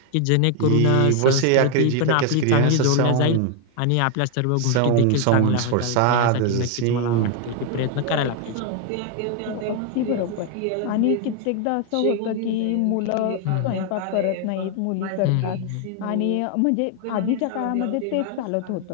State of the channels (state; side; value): different; both; correlation 0.00